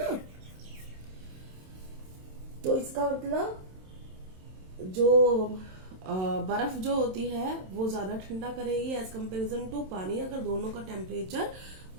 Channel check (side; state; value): left; late; 27 ms